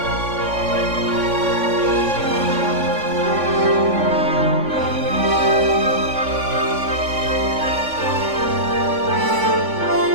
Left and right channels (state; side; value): late; left; 3.5 ms